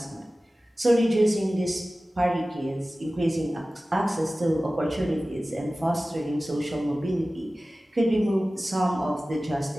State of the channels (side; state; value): both; normal; correlation 0.97